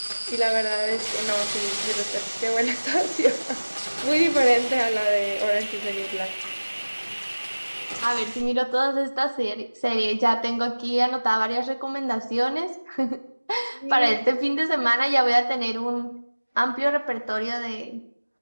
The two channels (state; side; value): inverted; both; correlation -1.00